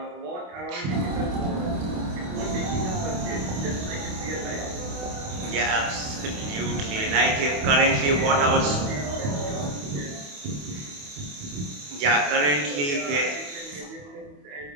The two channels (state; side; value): late; left; 28 ms